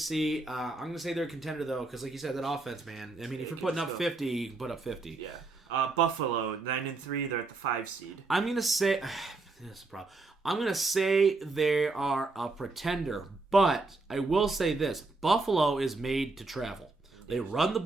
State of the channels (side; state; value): left; quieter; 3.5 dB